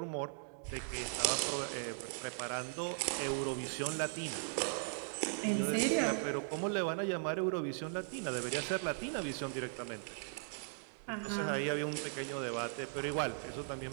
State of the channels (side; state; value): left; silent; digital silence